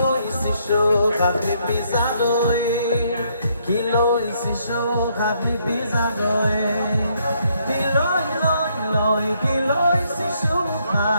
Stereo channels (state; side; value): inverted; both; correlation -0.71